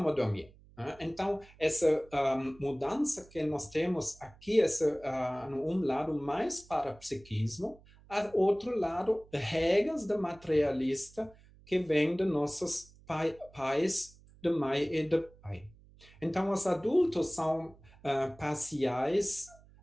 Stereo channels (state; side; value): noise; right; hum, 25 dB below the sound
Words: dormir. Né? Então, essa mudança que nós temos aqui, um lado mais para psiquismo, outro lado, regras da materialista que vem de nossos pais, de mãe e de pai. Então, os adultos são parciais